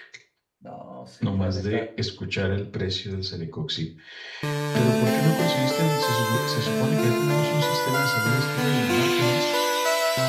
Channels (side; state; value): both; identical; correlation 1.00